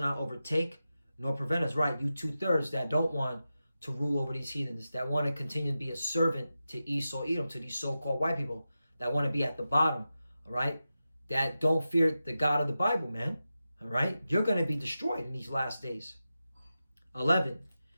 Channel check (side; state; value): both; inverted; correlation -0.92